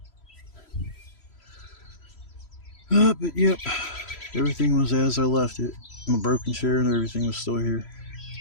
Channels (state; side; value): late; right; 3.0 ms